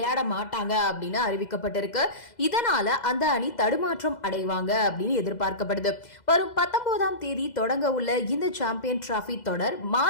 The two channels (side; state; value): right; late; 2.0 ms